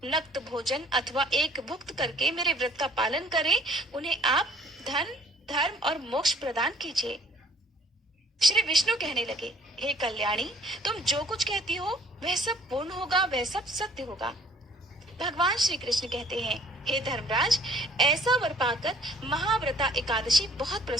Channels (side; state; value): both; normal; correlation 0.57